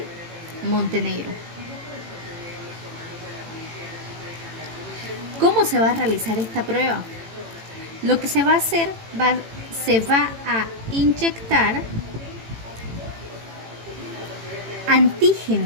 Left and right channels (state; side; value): late; left; 18 ms